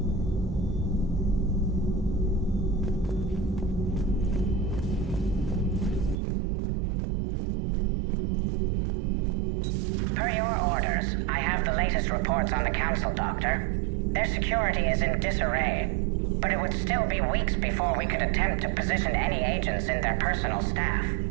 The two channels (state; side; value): drops out; left; at 6.2 s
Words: Per your orders, I have the latest reports on the Council, Doctor. Their security is in disarray, but it would still be weeks before we could attempt to position any agents in their personal staff.